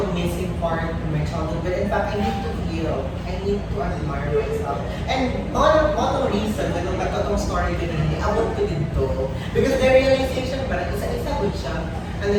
missing part in my childhood. But in fact, I need to heal. I need to admire myself. And one reason, when nagkatong story din hindi, abot ko dito. Because the realization, parang isa-isa ko siya. And then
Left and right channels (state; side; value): identical; both; correlation 1.00